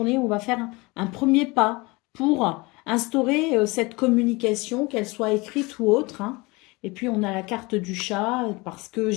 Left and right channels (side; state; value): right; quieter; 24.6 dB